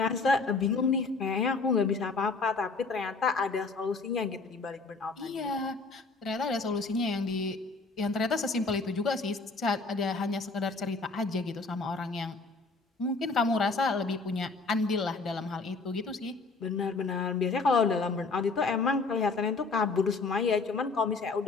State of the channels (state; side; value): quieter; right; 3.9 dB